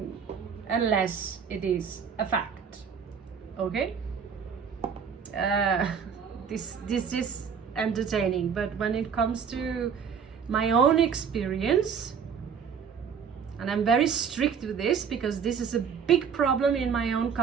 unless it is a fact. Okay? This is entertaining, but when it comes to my own experience, and I'm very strict with this because this is a big problem in my own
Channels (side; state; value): left; quieter; 6.8 dB